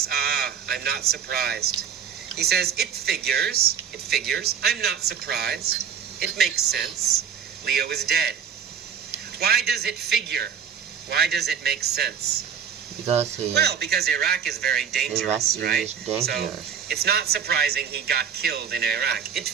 I'm not surprised. He says, it figures, I'm not surprised. It makes sense. Leo is dead. Why does it figure? Why does it make sense? Because Iraq is very dangerous, right? So it's not surprising he got killed in Iraq. It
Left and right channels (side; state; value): left; quieter; 7.5 dB